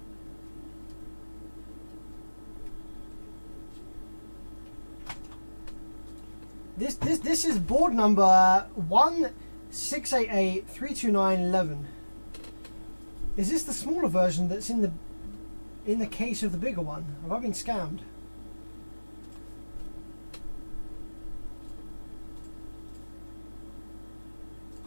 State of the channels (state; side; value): inverted; both; correlation -1.00